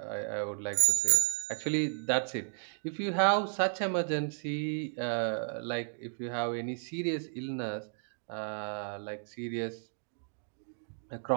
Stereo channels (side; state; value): left; silent; digital silence